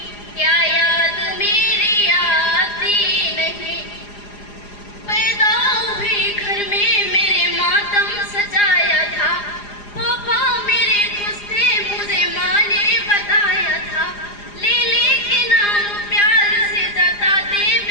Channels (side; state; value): right; late; 4.9 ms